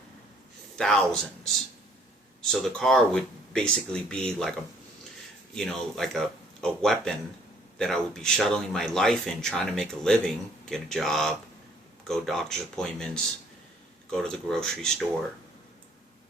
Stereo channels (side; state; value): both; normal; correlation 0.61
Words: Thousands. So the car would basically be like a weapon that I would be shuttling my life in, trying to make a living, get a job, go doctor's appointments, go to the grocery store.